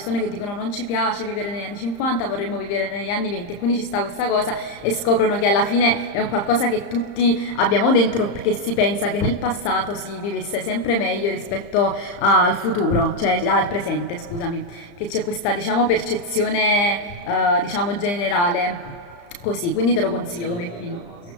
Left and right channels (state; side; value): late; right; 34 ms